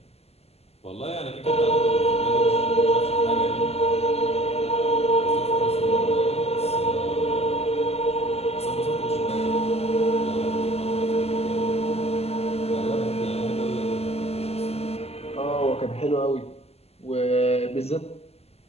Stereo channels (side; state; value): right; late; 0.29 ms